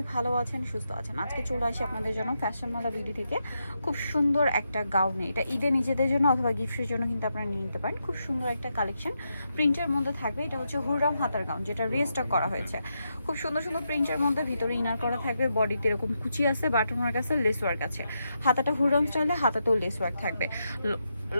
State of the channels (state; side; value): inverted; both; correlation -0.84